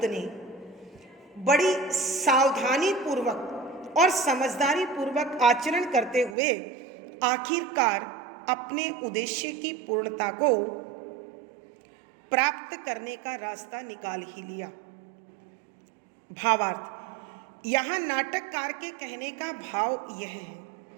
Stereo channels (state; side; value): drops out; left; at 6.4 s